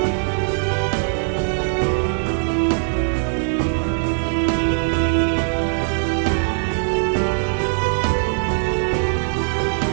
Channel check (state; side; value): silent; left; 65 dB below the other